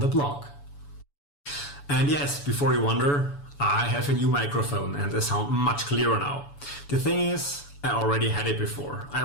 the blog. And yes, before you wonder, I have a new microphone and I sound much clearer now. The thing is, I already had it before. I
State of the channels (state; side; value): late; right; 7.0 ms